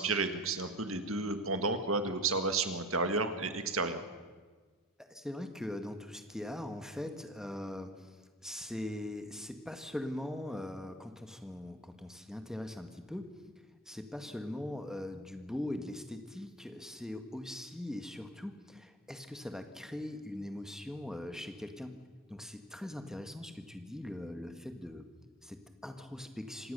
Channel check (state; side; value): normal; both; correlation 0.34